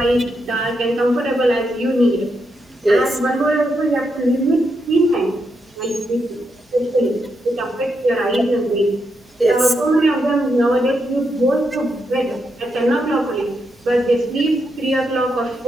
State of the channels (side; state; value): both; normal; correlation 0.82